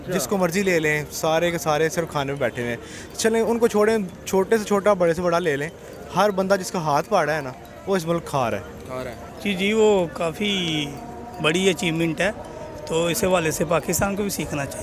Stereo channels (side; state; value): both; identical; correlation 1.00